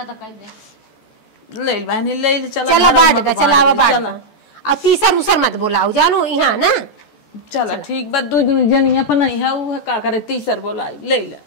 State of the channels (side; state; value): right; late; 14 ms